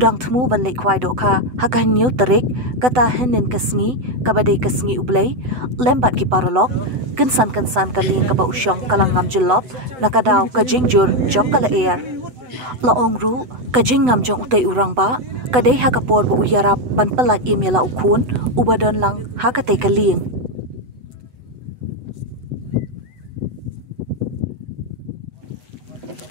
thmu ban le khwai do kha hakan new tarik kata henin kasngi kabadai kasngi ublei lembat ki paralok kensan kaling kaba usyong kalang ngam jelop nakadaw kajing jur jong kala air laong ru kajing ngam jong utei urang ba kadai hakapor bo uyarap ban palat imela ukhun ubadon lang hakatei kaling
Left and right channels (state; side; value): late; left; 8.0 ms